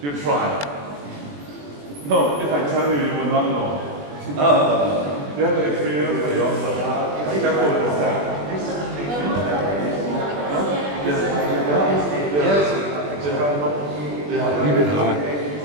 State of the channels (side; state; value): left; late; 21 ms